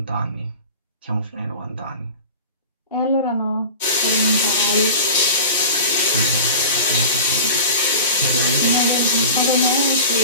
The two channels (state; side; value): inverted; both; correlation -0.34